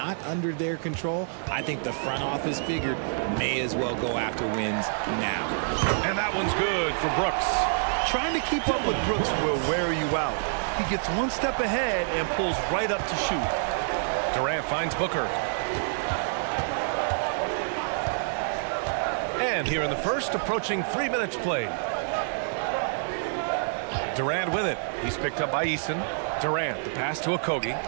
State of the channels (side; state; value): left; silent; digital silence